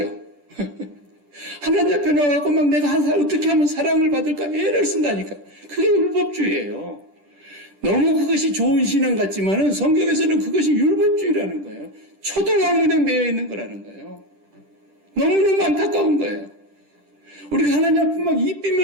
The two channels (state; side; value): late; left; 10 ms